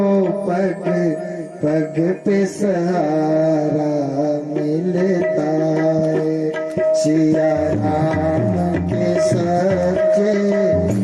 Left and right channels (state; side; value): identical; both; correlation 1.00